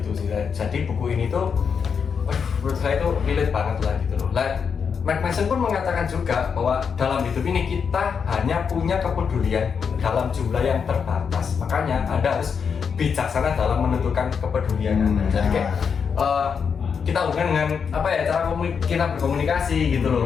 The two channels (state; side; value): quieter; right; 6.4 dB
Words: gitu sih. Jadi buku ini tuh menurut saya itu relate banget lah gitu loh. Mark Manson pun mengatakan juga bahwa dalam hidup ini kita hanya punya kepedulian dalam jumlah yang terbatas. Makanya Anda harus bijaksana dalam menentukan kepedulian Anda. Jadi kayak kita hubungan dengan apa ya, cara kita berkomunikasi gitu loh.